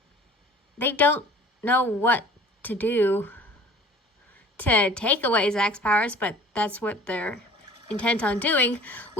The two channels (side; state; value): both; normal; correlation 0.47